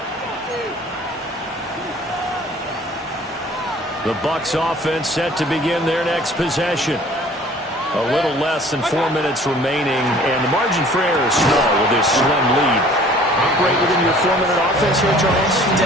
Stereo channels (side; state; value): both; normal; correlation 0.51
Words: The Bucs offense set to begin their next possession. A little less than 4 minutes remaining, and the margin for error is small with this slim lead. Operate within your 4-minute offense here, Charles?